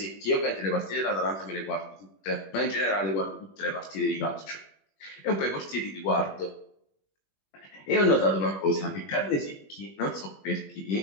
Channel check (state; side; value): late; right; 20 ms